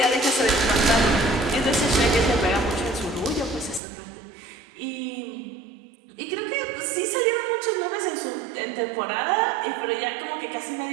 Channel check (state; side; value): drops out; left; at 3.8 s